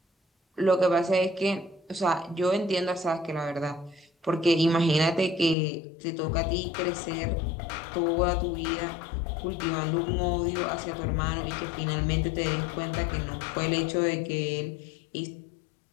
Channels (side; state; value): right; drops out; at 5.6 s